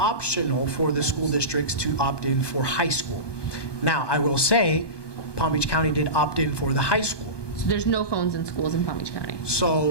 for the school districts to opt in for high school. Now, I will say, Palm Beach County did opt in for the high school. So there's no phones in schools in Palm Beach County,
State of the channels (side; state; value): right; late; 1.2 ms